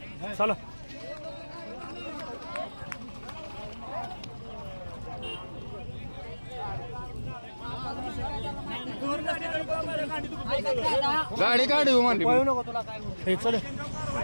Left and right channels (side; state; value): both; inverted; correlation -1.00